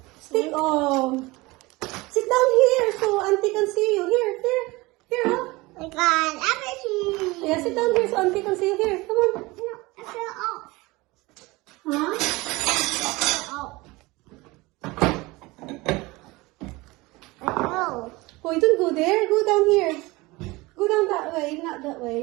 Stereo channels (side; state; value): left; quieter; 22.2 dB